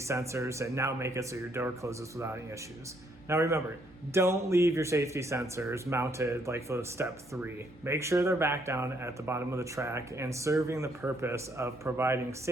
and now make it so your door closes without any issues. Now remember, don't leave your safety sensors mounted like for step 3. Make sure they're back down at the bottom of the track and serving the purpose of providing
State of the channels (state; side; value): normal; both; correlation 0.70